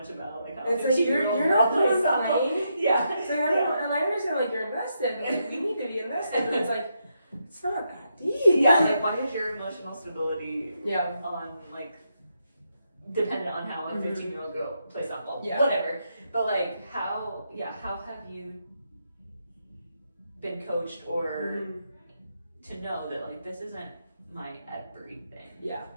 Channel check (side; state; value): both; inverted; correlation -0.81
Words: about like how it's like you're not playing. So and I understand like you're invested, but like, we need to be invested, and it's like it's not that deep. Like why is your emotional stability on like dependent on how a 15-year-old girl plays softball? Whatever. But like how have you been coached or to know that like this isn't my everything?